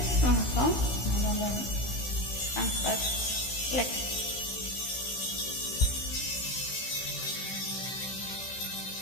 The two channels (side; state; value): right; late; 16 ms